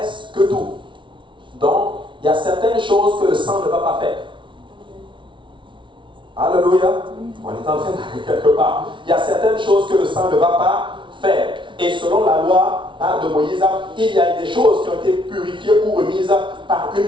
tout. Donc, il y a certaines choses que le sang ne va pas faire. Alléluia. On est en train d'aller quelque part. Il y a certaines choses que le sang ne va pas faire. Et selon la loi de Moïse, il y a des choses qui ont été purifiées ou remises par une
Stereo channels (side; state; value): left; late; 0.24 ms